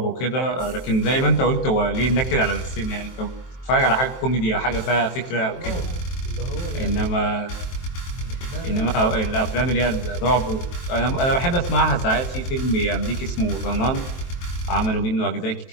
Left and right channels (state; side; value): late; right; 23 ms